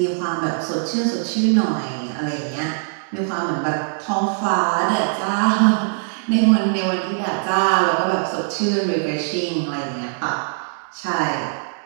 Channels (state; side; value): silent; left; 64 dB below the other